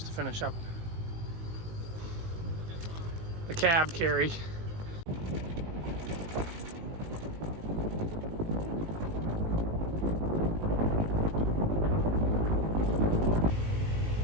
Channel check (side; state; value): left; late; 18 ms